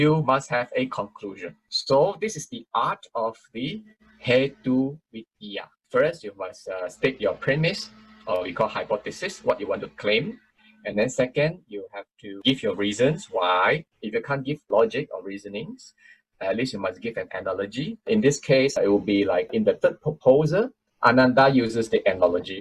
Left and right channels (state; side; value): identical; both; correlation 1.00